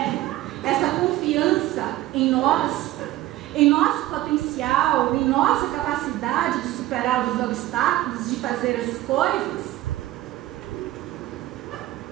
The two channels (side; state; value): left; quieter; 15.8 dB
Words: essa confiança em nós, em nosso potencial, em nossa capacidade de superar os obstáculos, de fazer as coisas.